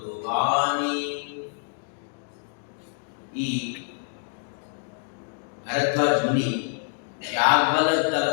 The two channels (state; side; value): silent; right; 60 dB below the other